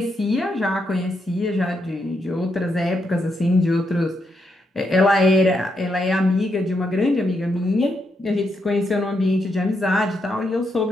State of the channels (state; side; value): normal; both; correlation 0.80